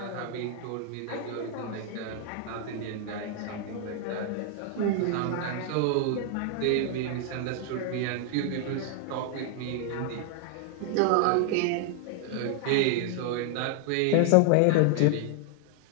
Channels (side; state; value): both; different; correlation 0.00